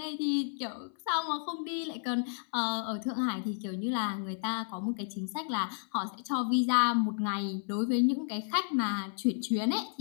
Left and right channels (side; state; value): right; silent; 56 dB below the other